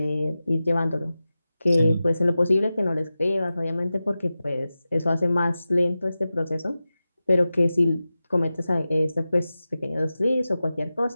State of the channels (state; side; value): inverted; both; correlation -0.94